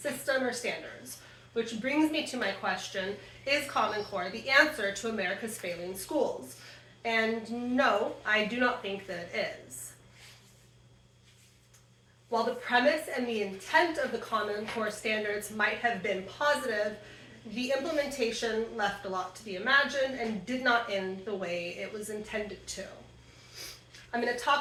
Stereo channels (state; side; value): identical; both; correlation 1.00